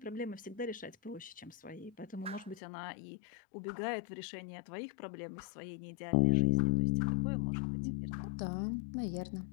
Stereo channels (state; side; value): drops out; right; at 2.6 s